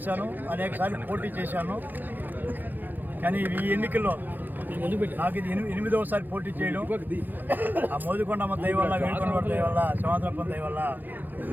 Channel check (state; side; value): late; left; 0.087 ms